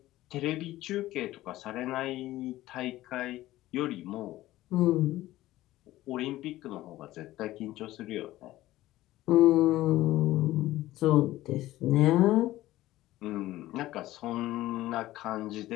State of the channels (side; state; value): right; quieter; 16.0 dB